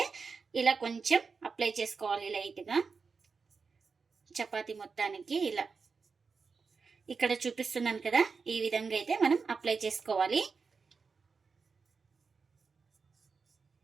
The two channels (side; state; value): left; quieter; 5.0 dB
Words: ఇలా కొంచెం అప్లై చేసుకోవాలి లైట్గా చపాతీ మొత్తానికి. ఇలా ఇక్కడ చూపిస్తున్నాను కదా, ఈ విధంగా అయితే మనం అప్లై చేసుకోవాలి.